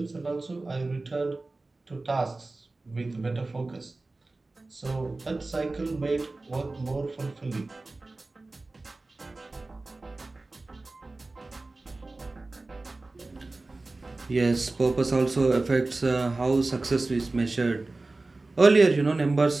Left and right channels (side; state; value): left; quieter; 3.2 dB